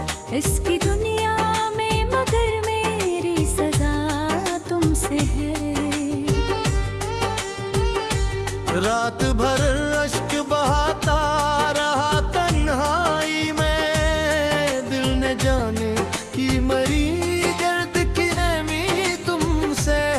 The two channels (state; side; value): identical; both; correlation 1.00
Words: इसकी दुनिया में, मगर मेरी सजा तुमसे है। रात भर अश्क बहाता रहा तन्हाई में, दिल ने जाने की मरी दर्द की नमी तुमसे